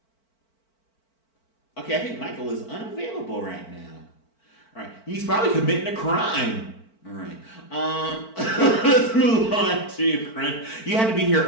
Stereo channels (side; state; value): right; late; 4.5 ms